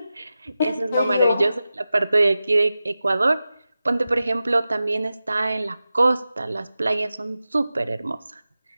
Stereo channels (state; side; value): inverted; both; correlation -0.93